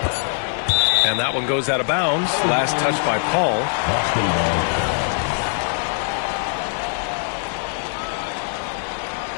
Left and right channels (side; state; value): right; silent; 64 dB below the other